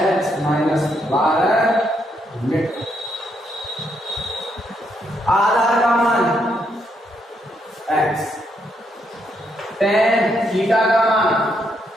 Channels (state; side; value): normal; both; correlation 0.76